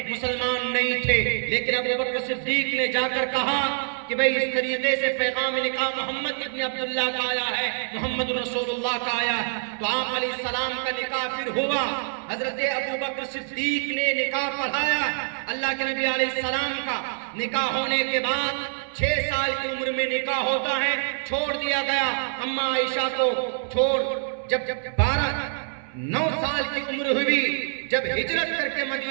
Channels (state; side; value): silent; left; 61 dB below the other